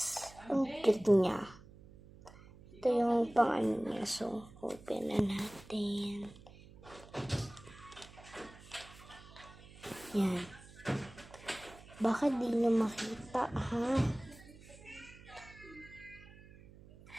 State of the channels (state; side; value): noise; right; hum, 20 dB below the sound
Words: Ang cute niya. Ito yung pang-ano niya. So, open na natin. Yan. Baka di nyo makita, ha?